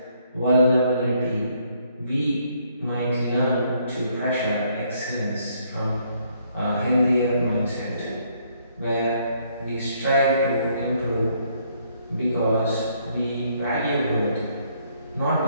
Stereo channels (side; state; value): both; inverted; correlation -0.69